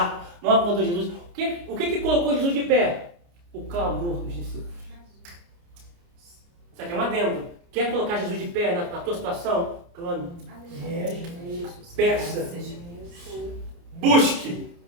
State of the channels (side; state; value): left; late; 29 ms